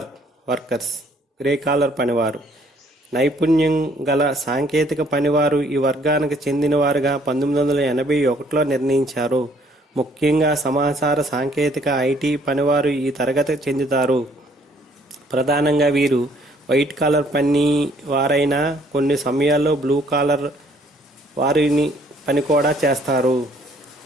workers, grey collar పనివారు. నైపుణ్యం గల సాంకేతిక పనివారు ఈ వర్గానికి చెందినవారుగా 1981లో నిర్ణయించారు. ముఖ్యంగా సమాచార సాంకేతిక, ఐటీ పనివారు ఈ తరగతికి చెందుతారు. ప్రధానంగా వీరు వైట్ కాలర్ పని వారైనా కొన్ని సమయాల్లో బ్లూ కాలర్ వారిని పని కూడా చేస్తారు.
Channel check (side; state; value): both; normal; correlation 0.62